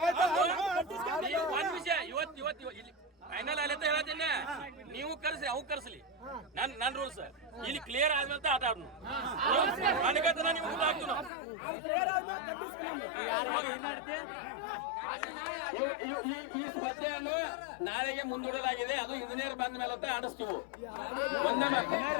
ಒಂದ್ ವಿಷಯ ಇವತ್ತು ಇಲ್ಲಿ ಫೈನಲ್ ಅಲ್ಲಂತ ಹೇಳತ್ತೀನಿ ನೀವು ಕರ್ಸಿ ಅವ್ ಕರ್ಸಲಿ ನನ್ನ ರೂಲ್ಸ್ ಇಲ್ಲಿ ಕ್ಲಿಯರ್ ಆದ್ಮೇಲೆ ಆಟ ಆಡ್ನು ನನಗಂತ ನೀವು ಊಟ ಹಾಕ್ತು ಈ ಸ್ಪರ್ಧೆಯನ್ನು ನಾಳೆಗೆ ಮುಂದೂಡಲಾಗಿದೆ ಅದು ಇಂಜಿನಿಯರ್ ಬಂದ ಮೇಲೆ ಅಂತ ಆಡಿಸ್ತೀವಿ ಒಂದೇ ಮಾತು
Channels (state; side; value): drops out; right; at 11.3 s